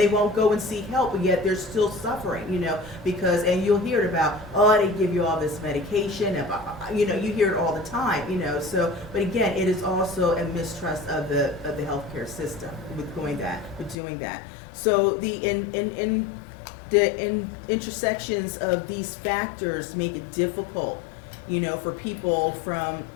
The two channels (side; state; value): right; drops out; at 14.0 s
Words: won't go and seek help, but yet they're still suffering, because, and you'll hear it about, they give you all this medication, and, you hear it all the time, so, but again, it is also a mistrust of the healthcare system with doing that. So the intersections of these factors make it difficult, for people from